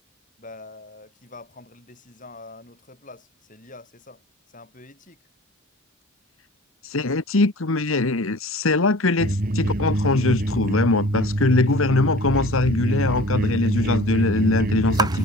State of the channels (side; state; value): both; normal; correlation 0.45